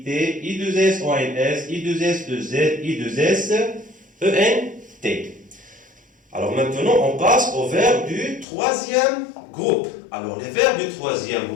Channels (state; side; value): drops out; right; at 8.5 s